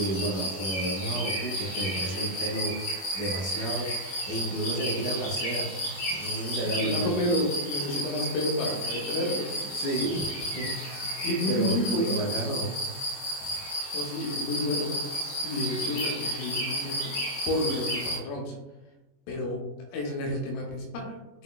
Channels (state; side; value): late; right; 21 ms